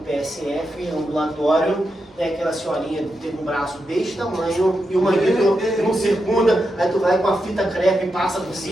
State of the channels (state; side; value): normal; both; correlation 0.86